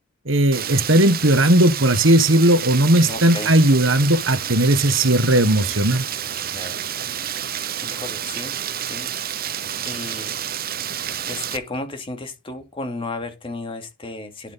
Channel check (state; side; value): normal; both; correlation 0.44